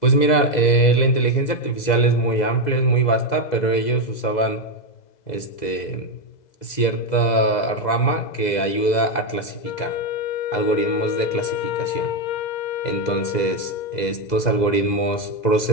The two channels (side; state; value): right; late; 2.0 ms